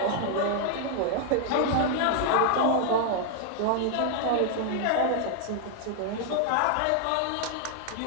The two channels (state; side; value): different; both; correlation 0.00